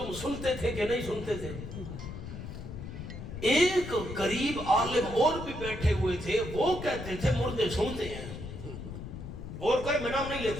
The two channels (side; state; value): left; noise; rumble, 9 dB below the sound